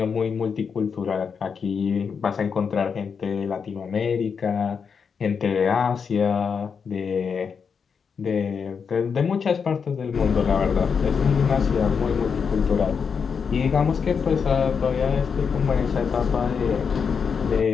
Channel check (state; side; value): quieter; right; 6.2 dB